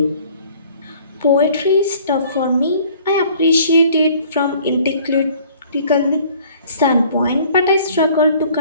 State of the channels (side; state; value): both; inverted; correlation -0.54